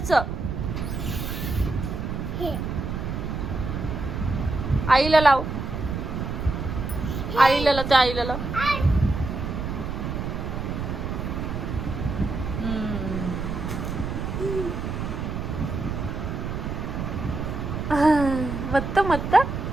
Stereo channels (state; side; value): noise; right; rumble, 4 dB below the sound